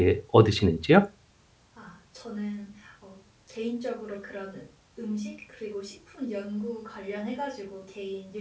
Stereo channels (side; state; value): both; identical; correlation 1.00